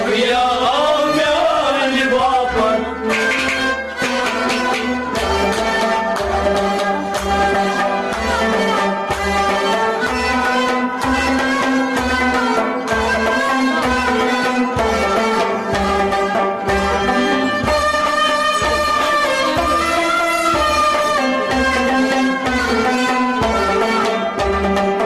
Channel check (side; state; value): both; identical; correlation 1.00